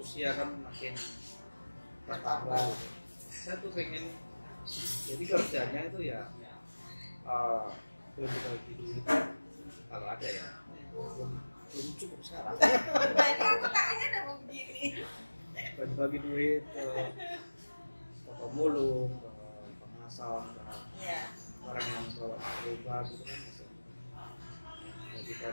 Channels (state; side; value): inverted; both; correlation -1.00